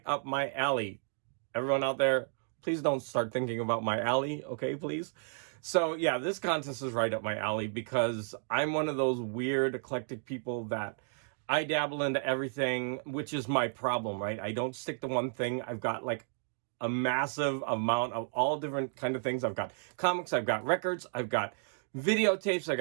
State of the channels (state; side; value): silent; left; digital silence